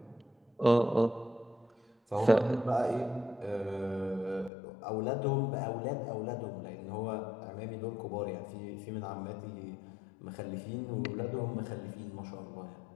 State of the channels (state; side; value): drops out; right; at 4.5 s